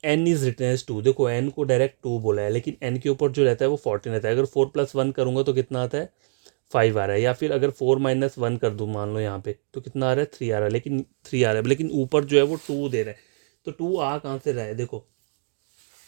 N is written as 2, देखो एन को डायरेक्ट 2 बोला है, लेकिन एन के ऊपर जो रहता है वो 14 रहता है। अगर 4+1 करूंगा तो कितना आता है, 5 आ रहा है, या फिर अगर 4-1 कर दूँ मान लो यहाँ पे, तो कितना आ रहा है, 3 आ रहा है, लेकिन 3 आ रहा है, लेकिन ऊपर जो है वो 2 दे रहा है, तो 2 आ कहाँ से रहा है, देखो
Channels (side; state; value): left; silent; digital silence